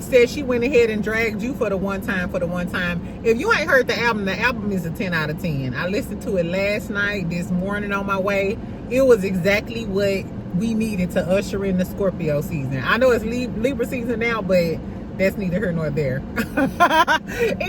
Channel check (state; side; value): identical; both; correlation 1.00